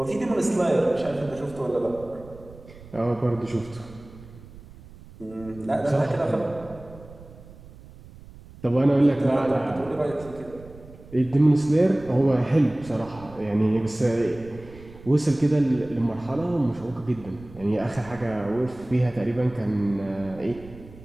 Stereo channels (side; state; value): right; noise; rumble, 19 dB below the sound